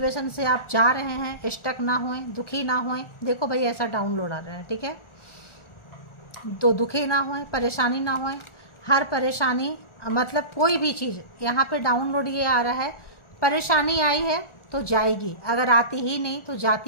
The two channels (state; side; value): late; right; 1.4 ms